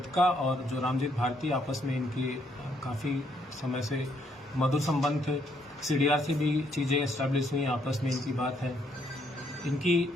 और जो रामजीत भारती आपस में इनके काफ़ी समय से मधुर संबंध थे। सीडीआर से भी चीज़ें एस्टैब्लिश हुई, आपस में इनकी बात है। इनकी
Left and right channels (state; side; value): normal; both; correlation 0.71